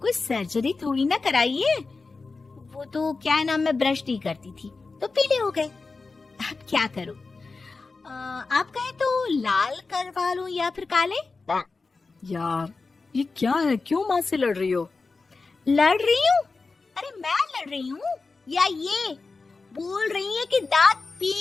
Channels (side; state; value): right; quieter; 4.0 dB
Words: कोई सर्जरी थोड़ी ना कराई है। वो तो क्या है ना, मैं ब्रश नहीं करती थी तो पीले हो गए। अब क्या करूं? आप कहें तो लाल करवा लूं या फिर काले? यार ये क्या है, क्यों माँ से लड़ रही हो? लड़ रही हूँ? अरे मैं लड़ रही हूँ या ये बोल रही है कि दांत